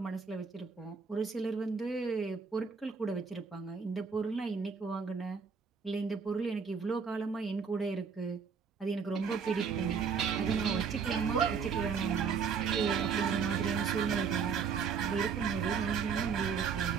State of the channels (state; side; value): quieter; left; 5.9 dB